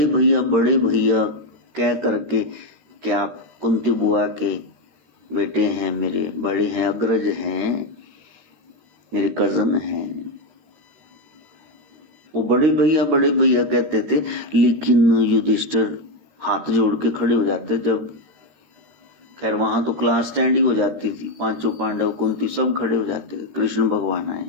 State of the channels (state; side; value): late; left; 13 ms